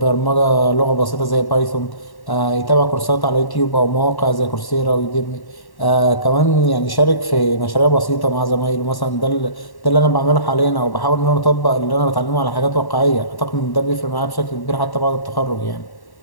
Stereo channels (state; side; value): late; right; 1.1 ms